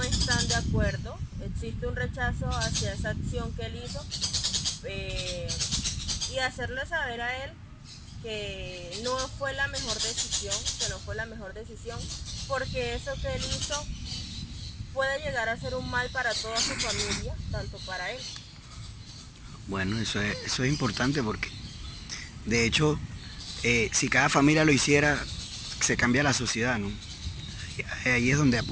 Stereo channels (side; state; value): both; identical; correlation 1.00